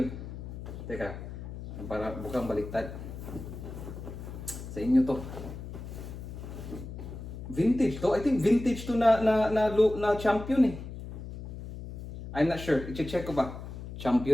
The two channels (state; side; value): noise; left; hum, 10 dB below the sound